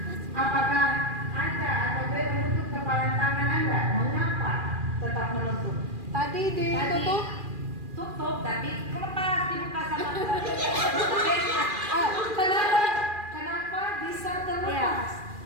Apakah Anda atau B menutup kepalan tangan Anda? Mengapa tetap menutup? Tadi ditutup. Tutup, tapi Lepas dibuka sama Kenapa bisa Iya. terlepas?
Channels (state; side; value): late; left; 2.4 ms